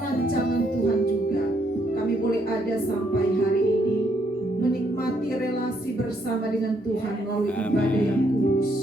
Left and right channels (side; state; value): both; normal; correlation 0.72